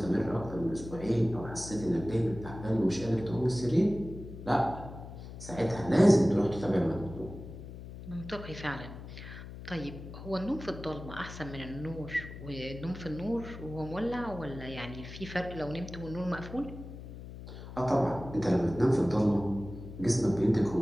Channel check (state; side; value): noise; left; hum, 12 dB below the sound